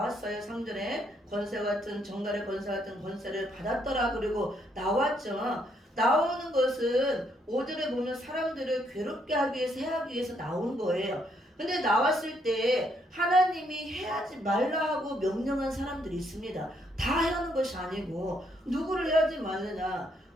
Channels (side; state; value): both; normal; correlation 0.72